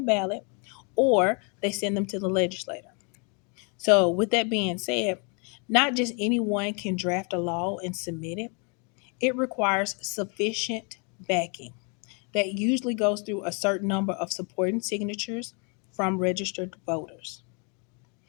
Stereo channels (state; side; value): quieter; right; 35.8 dB